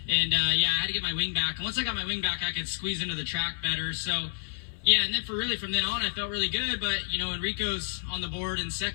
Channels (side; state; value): right; silent; 58 dB below the other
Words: and yeah, I had to get my wing back, and once I got my wing back, I could squeeze into the track better, so yeah, and then from then on, I felt really good, but, Enrico's on the board in